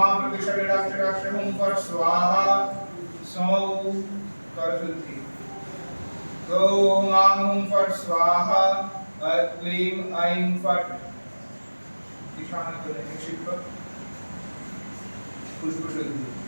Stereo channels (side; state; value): both; inverted; correlation -1.00